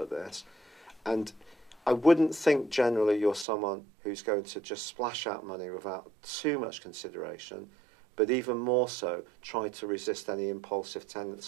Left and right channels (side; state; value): left; drops out; at 3.5 s